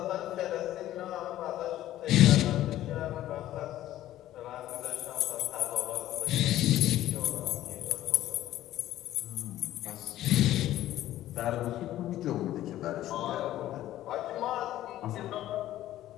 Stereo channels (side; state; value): right; quieter; 13.8 dB